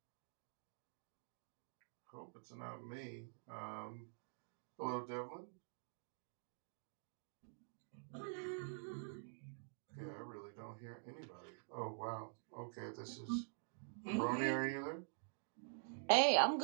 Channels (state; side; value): silent; left; digital silence